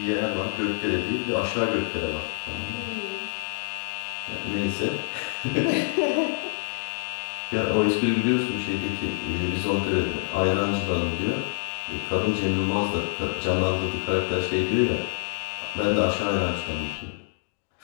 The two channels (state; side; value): silent; right; digital silence